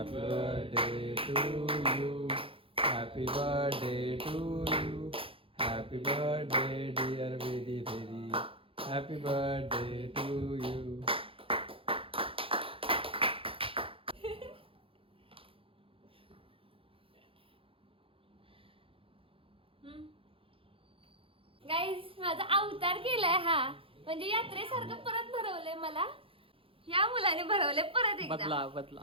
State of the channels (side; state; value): left; late; 0.26 ms